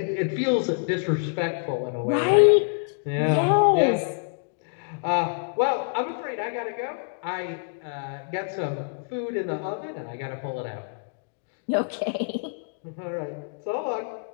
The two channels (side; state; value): right; silent; digital silence